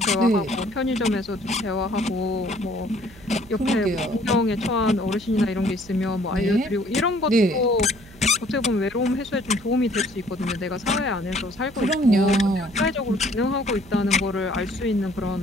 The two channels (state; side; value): noise; right; hum, 22 dB below the sound